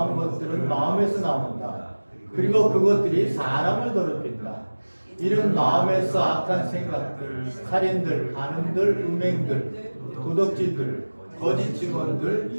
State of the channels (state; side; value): inverted; both; correlation -1.00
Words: 것들은 마음에서 나온다. 그리고 그것들이 사람을 더럽힌다. 이런 마음에서 악한 생각들, 살인들, 간음들, 음행들, 도덕질들, 거짓 증언들,